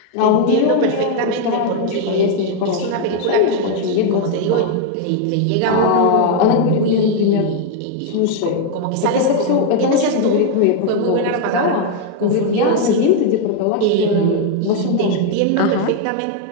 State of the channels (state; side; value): different; both; correlation 0.01